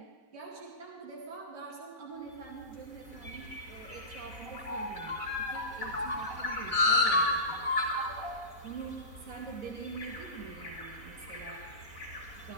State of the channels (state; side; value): late; right; 4.0 ms